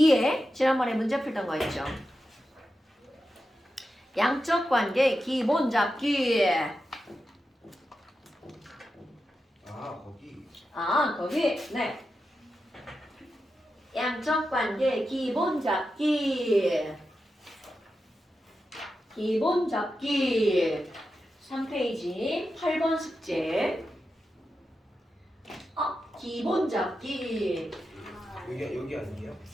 지난번에 문제 풀던 거 있죠? 양적 관계 기본 잡기. 거기. 거기. 네. 양적 관계 기본 잡기. 기본 잡기 3페이지 8번 숙제. 기본 잡기. 여기 아니에요?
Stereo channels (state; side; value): normal; both; correlation 0.90